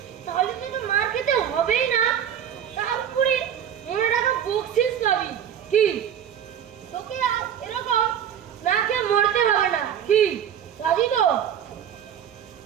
তাহলে তুই তো মার খেতে হবেই না, তারপরে মনে রাখা বকশিস পাবি। কি তোকে আর এরকম না খেয়ে মরতে হবে না, কি রাজি তো?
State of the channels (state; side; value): quieter; left; 9.3 dB